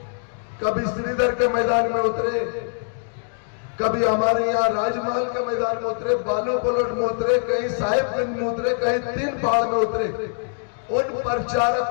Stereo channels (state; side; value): silent; right; 63 dB below the other